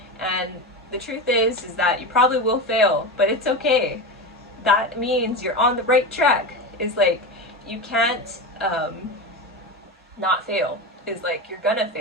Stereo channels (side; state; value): both; normal; correlation 0.21